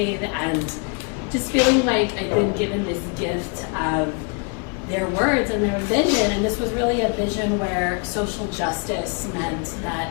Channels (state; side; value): quieter; right; 35.9 dB